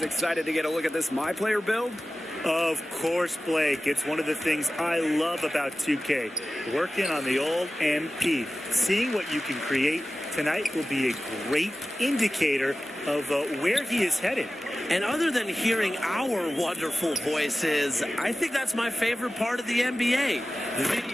excited to get a look at this My Player build? Of course, Blake. It's one of the things I love about 2K. Working on the old MP. Seeing what you can create tonight will be a great indicator of where he is headed. And other than hearing our wonderful voices, I think that's my favorite part of the NBA. The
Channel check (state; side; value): normal; both; correlation 0.95